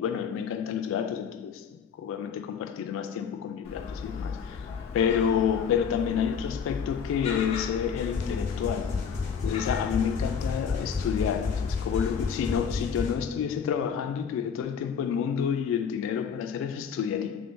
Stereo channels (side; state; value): right; quieter; 6.9 dB